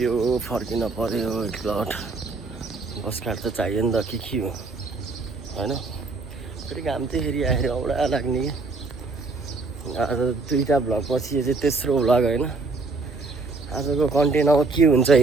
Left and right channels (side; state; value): left; quieter; 3.7 dB